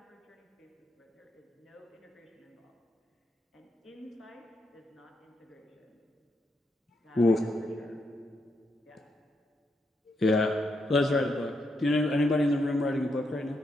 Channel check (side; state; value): both; normal; correlation 0.80